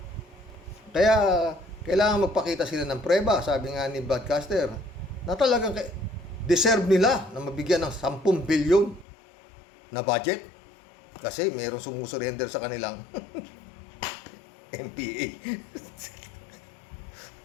Kaya, kailangan magpakita sila ng preba, sabi nga ni Broadcaster, na talagang deserve nila na mabigyan ng 10 billion na budget. Kasi mayroong sumusurrender sa kanilang MPA.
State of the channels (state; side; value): drops out; right; at 9.1 s